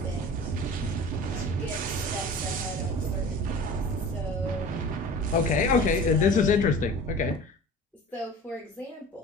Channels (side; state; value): both; normal; correlation 0.39